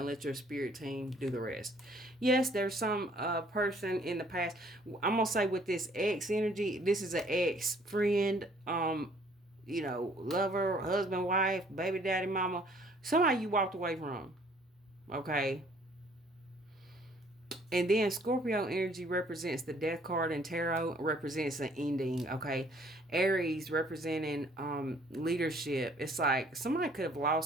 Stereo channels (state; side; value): normal; both; correlation 0.60